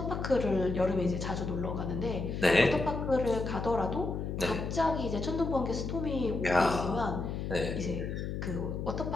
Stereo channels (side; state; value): left; noise; hum, 4 dB below the sound